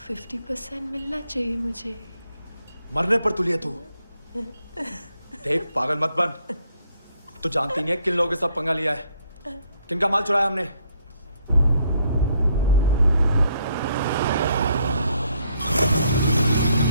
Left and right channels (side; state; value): both; inverted; correlation -0.70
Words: 50% मिलना चाहिए मुझे। मरने पर तुलिए तू। देख, पागल मत बन। तू जानती नहीं है किन लोगों के साथ पंगा लिया है, किनका माल चुराया हमने।